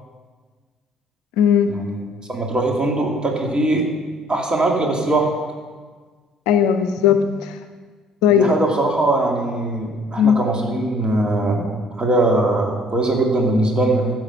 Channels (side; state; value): both; normal; correlation 0.56